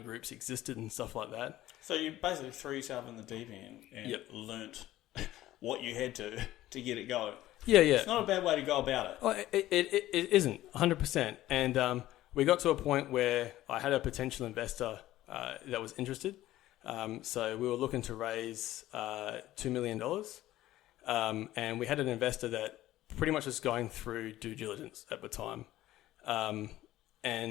existed and stuff like that. So you basically threw yourself in the deep end and learnt what you had to get it going. Yeah. It's not a bad way to go about it. Oh, it isn't, 100%. And we got to a point where I had a potential investor that was interested. So we were looking to raise $2 million. And we had an investor that pretty much was going through due diligence at the time.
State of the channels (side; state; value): right; quieter; 14.9 dB